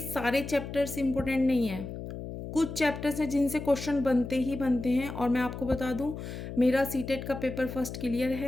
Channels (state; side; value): noise; left; hum, 8 dB below the sound